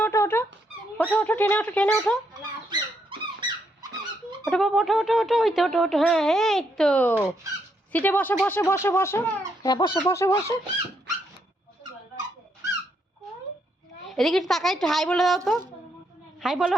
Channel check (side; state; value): both; normal; correlation 0.76